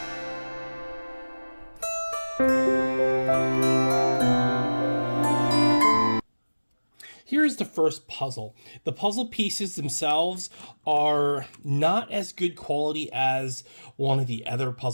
Here's the first puzzle. The puzzle pieces themselves are not as good quality as one of the other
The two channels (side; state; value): both; inverted; correlation -1.00